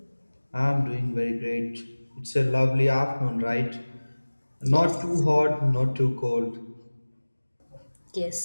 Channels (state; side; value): inverted; both; correlation -1.00